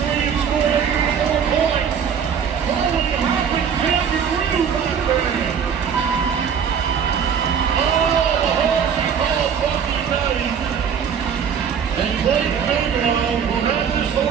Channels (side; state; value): left; quieter; 7.3 dB